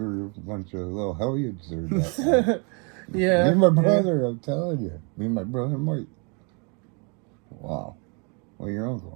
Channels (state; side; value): quieter; left; 34.6 dB